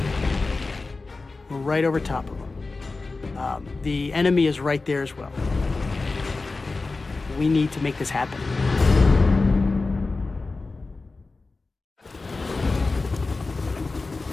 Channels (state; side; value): quieter; right; 3.7 dB